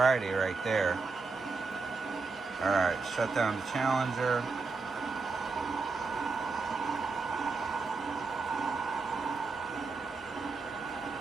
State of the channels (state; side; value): quieter; left; 4.3 dB